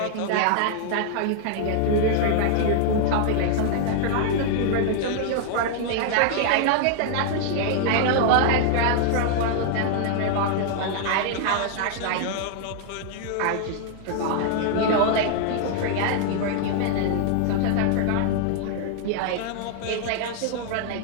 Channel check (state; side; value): different; both; correlation 0.00